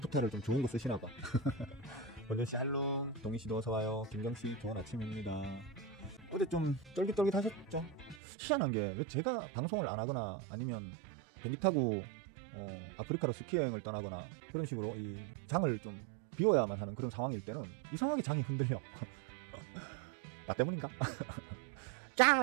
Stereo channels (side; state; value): left; drops out; at 8.2 s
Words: 좀 좋은 거 쓰시나봐. 원준씨 할롱, 동희씨도 어서와요. 김경씨 좋은 아침입니다. 어제 좀 쫄깃쫄깃 하셨죠? 희한한 게 왜 제가 방송을 안 하거나 아니면 비행기 타고 아프리카로 스키 여행을 떠나거나 그런 식으로 이 장을 좀 비워야만 하는 그런 상황일 때는 이상하게 장이 흔들려. 나 때문인가?